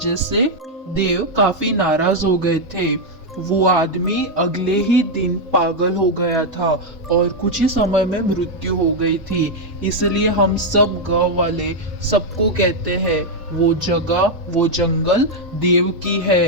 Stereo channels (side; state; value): both; normal; correlation 0.00